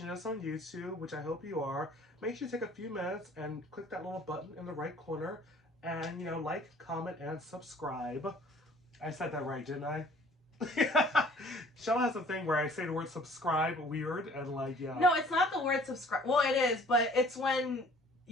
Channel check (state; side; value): normal; both; correlation 0.53